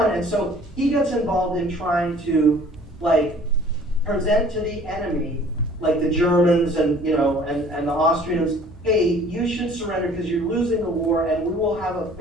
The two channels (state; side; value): normal; both; correlation 0.52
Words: And so he gets involved in trying to present to the enemy, the Germans and the Austrians, hey, you should surrender because you're losing the war, and we will have a